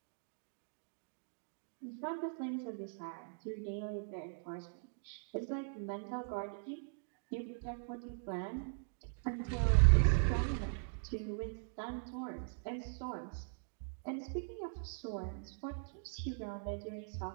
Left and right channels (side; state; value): left; silent; digital silence